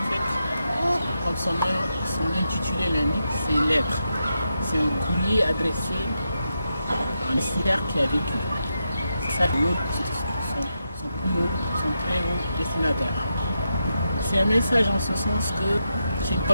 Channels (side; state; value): both; inverted; correlation -0.85